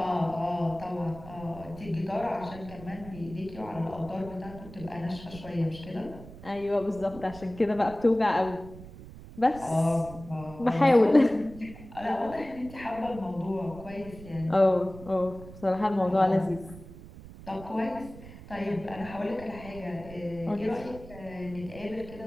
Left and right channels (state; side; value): noise; right; rumble, 16 dB below the sound